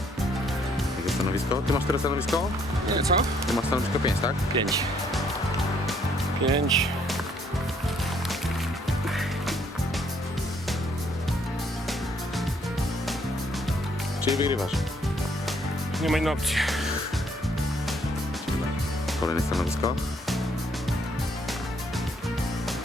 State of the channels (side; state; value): both; normal; correlation 0.67